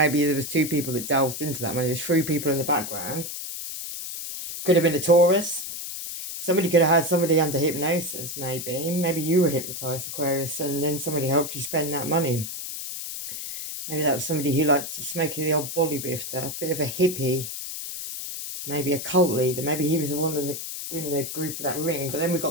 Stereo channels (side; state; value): left; noise; hiss, 7 dB below the sound